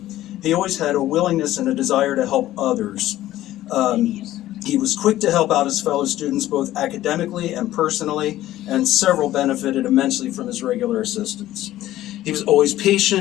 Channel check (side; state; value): right; quieter; 14.4 dB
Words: He always had a willingness and a desire to help others. He was quick to help out his fellow students both academically and personally, and several benefited immensely from his regular assistance. He was always